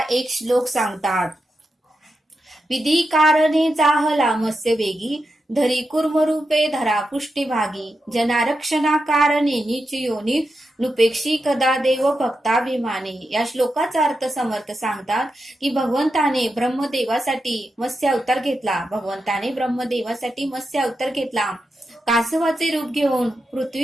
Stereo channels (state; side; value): normal; both; correlation 0.88